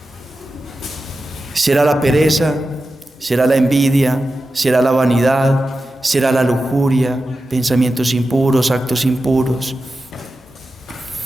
¿Será la pereza? ¿Será la envidia? ¿Será la vanidad? ¿Será la lujuria? ¿Pensamientos impuros, actos impuros?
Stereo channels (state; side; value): normal; both; correlation 0.92